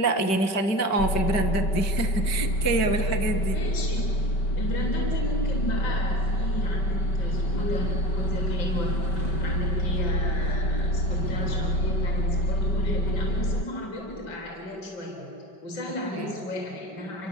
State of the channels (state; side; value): late; right; 5.2 ms